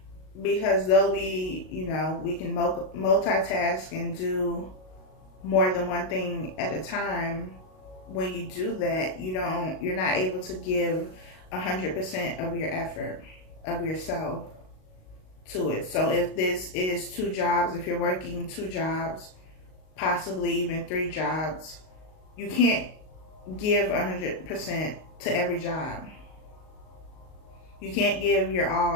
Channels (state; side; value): late; right; 38 ms